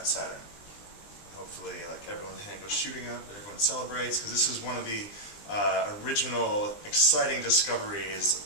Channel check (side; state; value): right; late; 20 ms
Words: Saturn? Hopefully, like, everyone's hand goes shooting up, and everyone celebrates, because this is one of the original, exciting discoveries